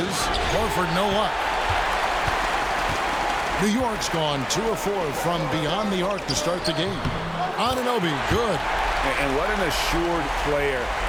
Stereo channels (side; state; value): both; identical; correlation 1.00